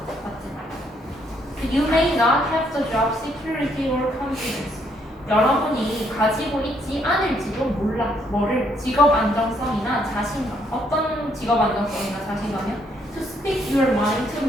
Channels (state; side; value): normal; both; correlation 0.71